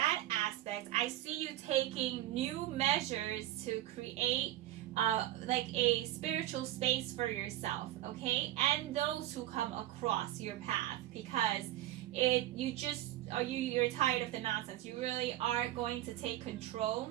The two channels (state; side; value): quieter; left; 14.4 dB